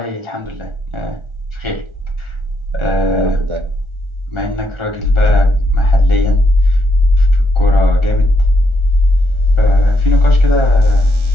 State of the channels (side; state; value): left; late; 1.4 ms